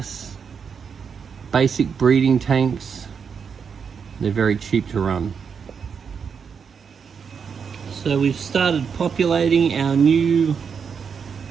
basic breeding tanks. They're very cheap to run. So we've started populating our newly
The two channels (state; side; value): quieter; left; 6.4 dB